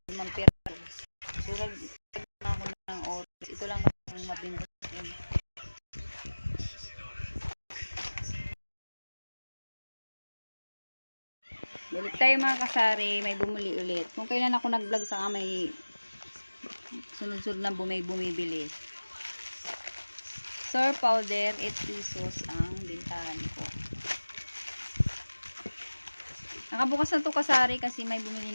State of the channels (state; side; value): inverted; both; correlation -1.00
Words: Mampira. Surag na ako ng oras. Ito lang ang mabinta. Balik tayo mga kasari, may bumuli ulit. Kung kailan ako nag-vlog saka may sunod-sunod na bumibili. Sour powder, 8 pesos ang bintahan ko. Nakabukas na to kasari kasi may